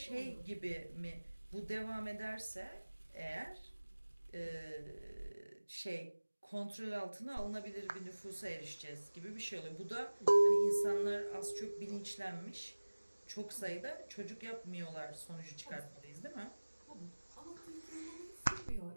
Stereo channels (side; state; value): both; inverted; correlation -1.00